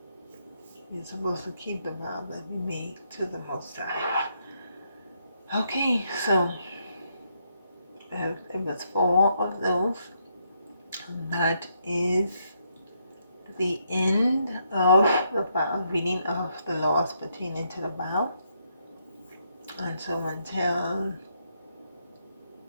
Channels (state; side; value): inverted; both; correlation -0.76